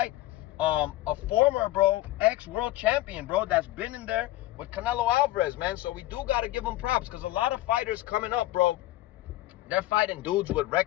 a former, bro, ex-world champion, bro, that's been in there with Canelo Alvarez, man. So we do got to give him props, because a lot of fighters coming up, bro, they're fighting dudes with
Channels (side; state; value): right; quieter; 16.6 dB